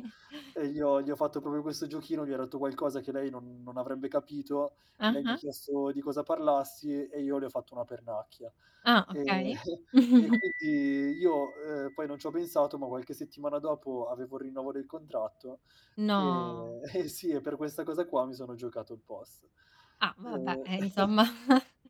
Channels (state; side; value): identical; both; correlation 1.00